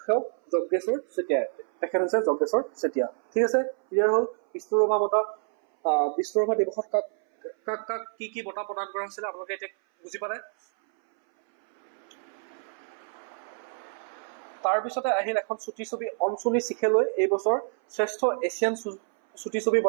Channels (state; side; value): silent; left; 60 dB below the other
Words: যজ্ঞেশ্বৰ চেতিয়া। তেখেত হৈছে যজ্ঞেশ্বৰ চেতিয়া। ঠিক আছে, ক্লিয়াৰ হ'ল। বিষ্ণু ৰাভা বঁটা, বিষ্ণু ৰাভা দিৱসত কাক কি বঁটা প্ৰদান কৰা হৈছিলে আপোনালোকে এতিয়া বুজি পালে। তাৰপিছতে আহিল এখন চুটি ছবি অঞ্চনী চিখেলৈ এই বছৰ শ্ৰেষ্ঠ এছিয়ান চুটি ছবি